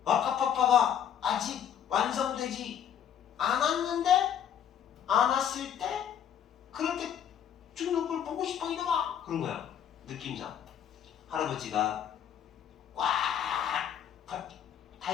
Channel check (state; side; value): quieter; right; 9.2 dB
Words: 와카파파가 아직 완성되지 않았을 때 그렇게 죽는 걸 보고 싶어 이놈아. 그런 거야. 느낌상 할아버지가 꽉